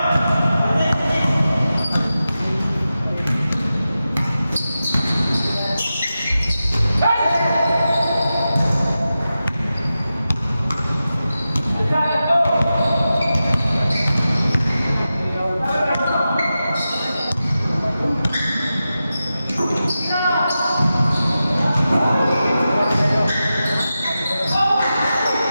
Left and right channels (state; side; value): inverted; both; correlation -0.92